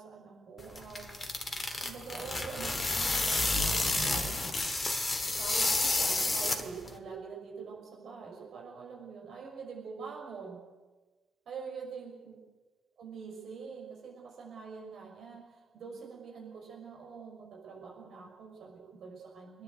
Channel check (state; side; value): normal; both; correlation 0.87